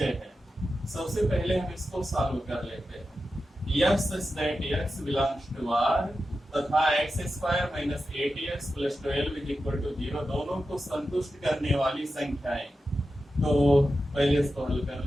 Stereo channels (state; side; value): normal; both; correlation 0.91